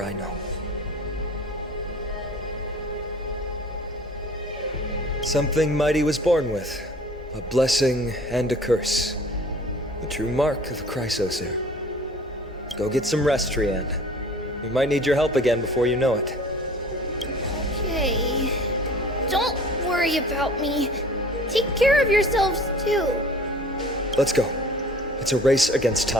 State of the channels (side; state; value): both; normal; correlation 0.47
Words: I know. Something Mighty was born with. A blessing and a curse. The true mark of a Chrysosaur. Go get some rest, Trianne. We might need your help again before you know it. Okay. Don't worry about me. Take care of yourselves, too. Let's go. It's a race against